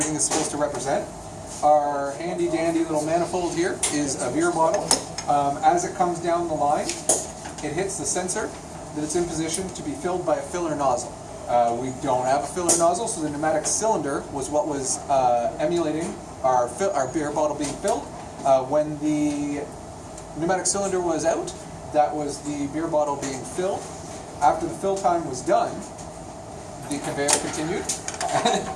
is supposed to represent. Our handy dandy little manifold here is a beer bottle. As it comes down the line, it hits the sensor that it's in position to be filled by a filler nozzle. We don't have a filler nozzle, so the pneumatic cylinder was what was emulating our beer bottle being filled. When the pneumatic cylinder was out, that was the beer bottle being filled. After the fill time was done, the conveyor continued.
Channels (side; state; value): both; identical; correlation 1.00